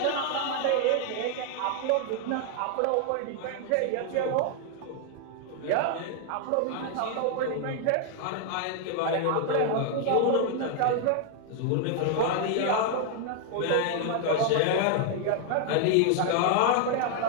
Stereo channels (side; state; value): both; different; correlation 0.00